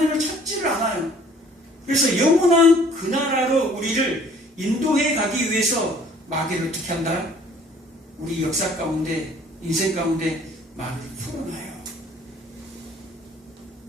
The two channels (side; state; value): both; normal; correlation 0.56